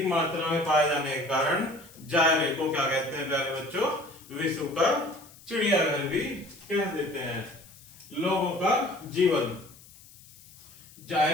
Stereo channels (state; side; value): noise; left; hiss, 22 dB below the sound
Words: मात्रा में पाए जाने के कारण जायरे को क्या कहते हैं प्यारे बच्चों? विश्व का चिड़ियाघर भी कह देते हैं। लोगों का जीवन।